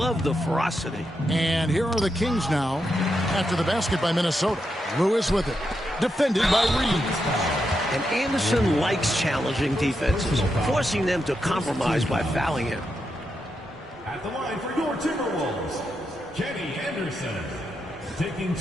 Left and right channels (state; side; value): normal; both; correlation 0.85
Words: the ferocity. And here are the Kings now after the basket by Minnesota. Lewis with it. Defended by Reeves. And Anderson likes challenging defenses, forcing them to compromise by fouling him. At the line for your Timberwolves, Kenny Anderson, taking